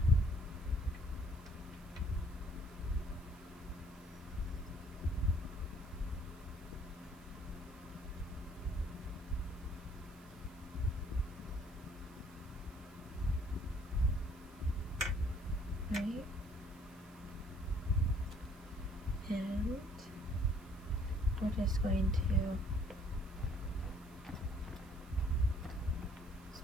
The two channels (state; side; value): noise; right; hiss, 25 dB below the sound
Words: Right? And we're just going to